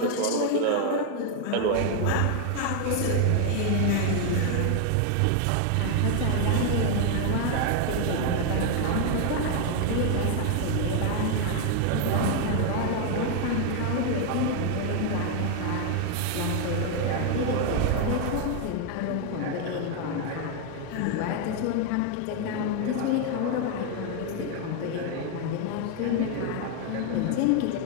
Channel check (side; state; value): both; different; correlation 0.00